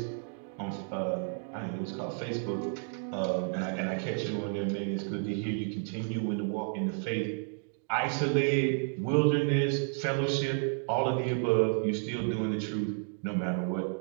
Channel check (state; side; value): silent; left; 57 dB below the other